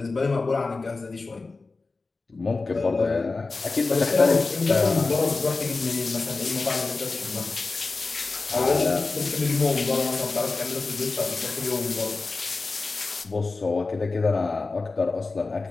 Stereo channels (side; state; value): right; quieter; 3.8 dB